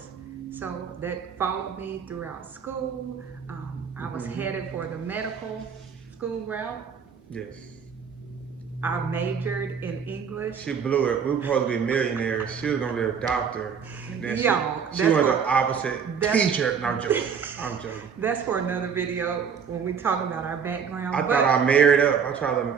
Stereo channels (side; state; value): left; quieter; 6.7 dB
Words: So that followed me throughout school. I was headed for the medical school route. Yes. I majored in English. She blew it. We were supposed to be millionaires. She was gonna be a doctor. And then Y'all, she went the opposite. Teacher. No, I'm joking. I'm joking. That's for another video when we talk about our background. I thought I married up. I tried to